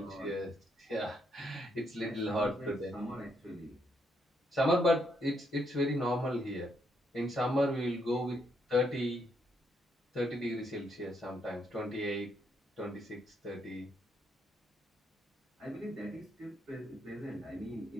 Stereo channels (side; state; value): both; normal; correlation 0.76